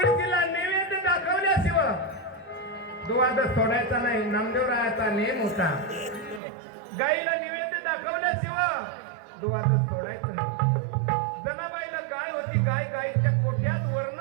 नैवेद्य दाखवल्याशिवाय दुवाद सोडायचा नाही. नामदेवरायाचा नेम होता. गाईला नैवेद्य दाखवल्याशिवाय दुवाद सोडायचं नाही. जनाबाईला गाय होती. गाईच्या कोठ्यात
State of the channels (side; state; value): left; drops out; at 6.4 s